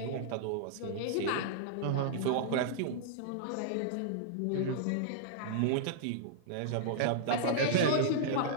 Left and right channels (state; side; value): different; both; correlation -0.01